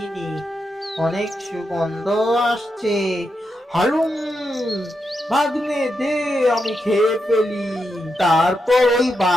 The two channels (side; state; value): both; normal; correlation 0.85